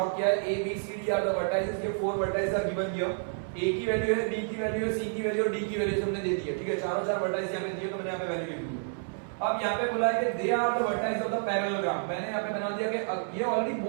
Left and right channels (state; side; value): silent; left; 58 dB below the other